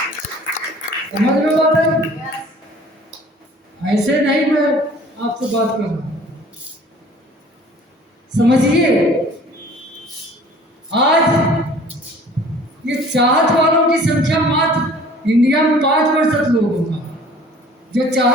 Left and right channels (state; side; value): normal; both; correlation 0.50